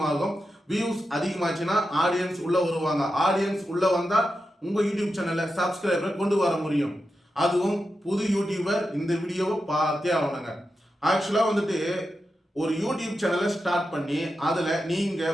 வியூஸ் அதிகமாச்சுன்னா ஆடியன்ஸ் உள்ளே வருவாங்க. ஆடியன்ஸ் உள்ளே வந்தால் உங்கள் யூடியூப் சேனலில் சப்ஸ்கிரைபரை கொண்டு வர முடியும். அதுவும் புது யூடியூபர் இந்த வீடியோவை பார்த்தே ஆகணுங்க. ஆக்சுவலாக வந்துட்டு ஒரு யூடியூப் சேனலை ஸ்டார்ட் பண்ணி அதில்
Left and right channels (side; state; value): both; normal; correlation 0.89